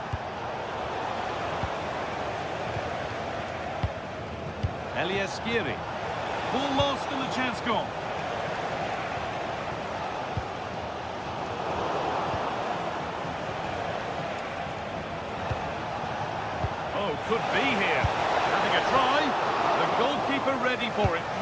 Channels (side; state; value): both; identical; correlation 1.00